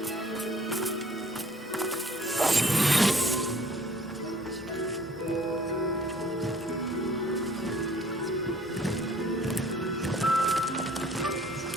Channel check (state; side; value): normal; both; correlation 0.55